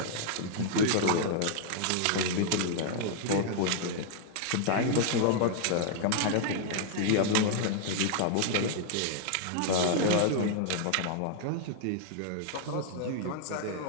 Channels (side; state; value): both; different; correlation -0.01